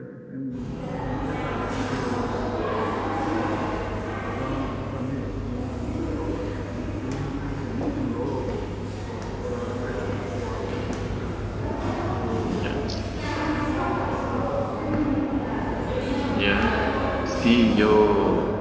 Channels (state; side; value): identical; both; correlation 1.00